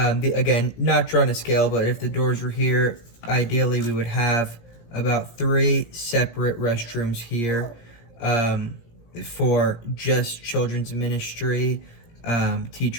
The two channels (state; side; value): late; right; 17 ms